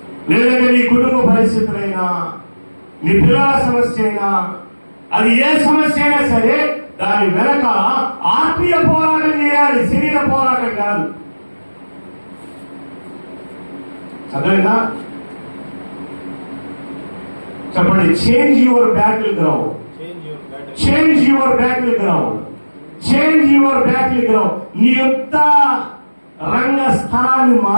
లేదంటే నీ కుటుంబ పరిస్థితులైనా, నీ పిల్లల సమస్య అయినా, అది ఏ సమస్య అయినా సరే దాని వెనక ఆత్మీయ పోరాటం చేయాలి, శరీర పోరాటం కాదు. అర్థమైందా? చెప్పండి. Change your battle ground. Change your battle ground. Change your battle ground. నీ యుద్ధ రంగ స్థలాన్ని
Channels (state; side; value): inverted; both; correlation -1.00